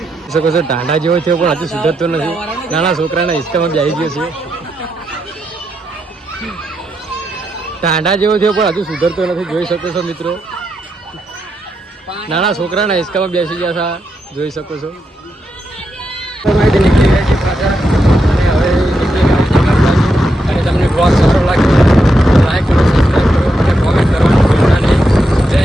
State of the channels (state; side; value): normal; both; correlation 0.83